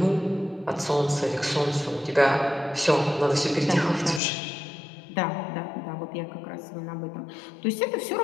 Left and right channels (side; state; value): right; drops out; at 4.2 s